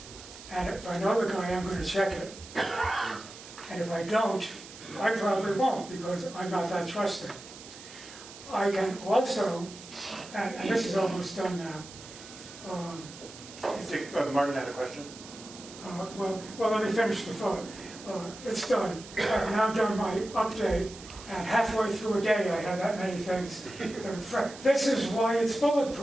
and if I know the guy, I'm going to check it. And if I don't, I probably won't, because I'm not that trusting. I can also, and this is almost done now. Martin had a question. Well, let me finish the thought. It's done. I've now done my update, and halfway through a day, I have that many things that are fresh. This is why it's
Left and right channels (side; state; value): right; noise; hiss, 16 dB below the sound